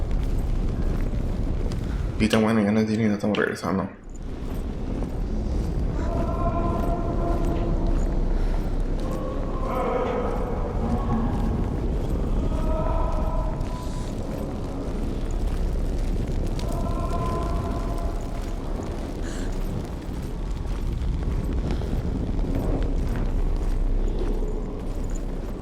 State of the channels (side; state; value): both; identical; correlation 1.00